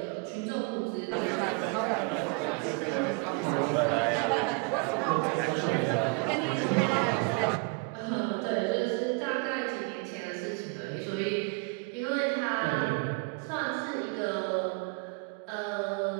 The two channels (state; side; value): quieter; left; 32.1 dB